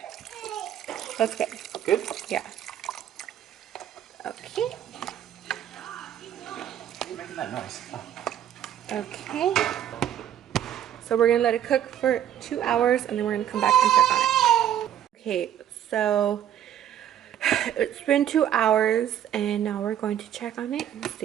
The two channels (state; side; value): quieter; left; 10.5 dB